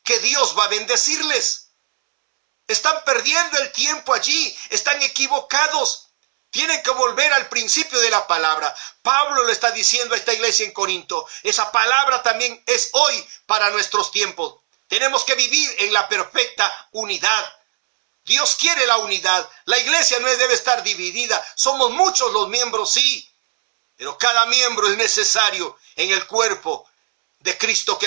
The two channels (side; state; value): left; silent; 67 dB below the other